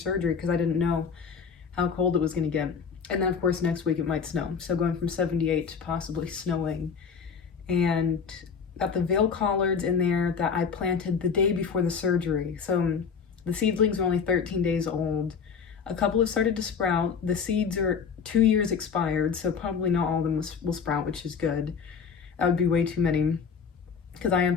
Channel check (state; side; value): quieter; right; 6.1 dB